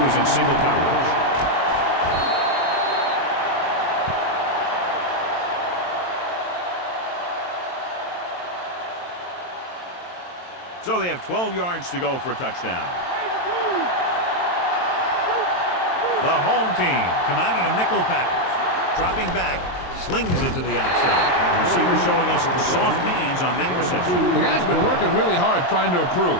was in single coverage. So they have 12 yards to go for a touchdown. The home team come out in a nickel package. Dropping back, slings it to the outside. The receiver showing us soft hands on that reception. The guy's been working really hard trying to improve.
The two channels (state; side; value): late; right; 22 ms